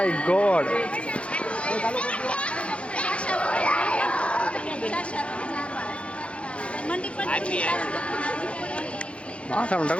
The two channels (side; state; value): right; late; 0.061 ms